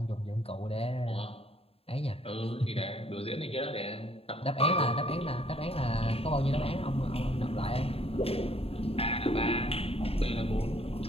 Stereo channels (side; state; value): right; late; 0.28 ms